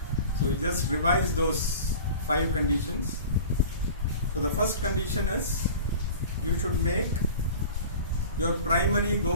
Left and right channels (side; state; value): both; inverted; correlation -0.39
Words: So we'll just revise those 5 conditions. So the first condition is you should make your primary